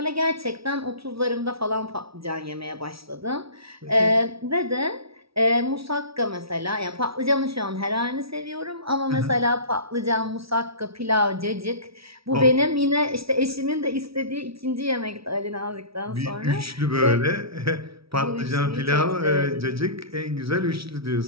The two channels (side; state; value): left; late; 0.76 ms